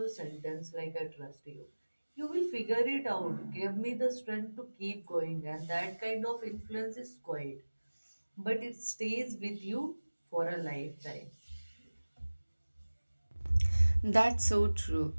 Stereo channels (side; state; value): both; inverted; correlation -1.00